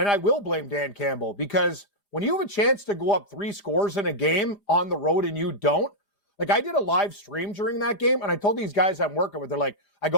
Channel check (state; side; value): late; right; 4.7 ms